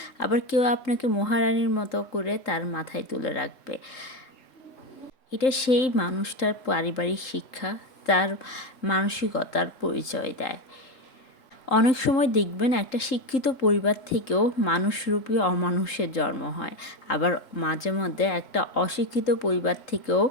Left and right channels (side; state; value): right; late; 3.8 ms